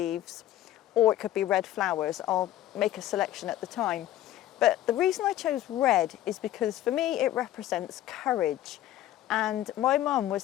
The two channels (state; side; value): quieter; right; 13.3 dB